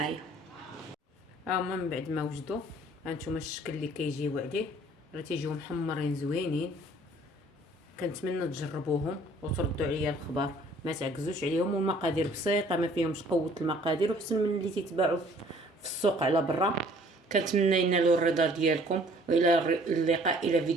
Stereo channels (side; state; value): both; normal; correlation 0.56